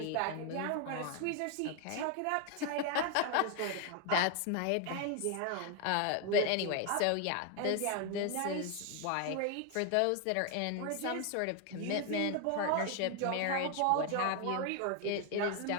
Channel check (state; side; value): different; both; correlation 0.01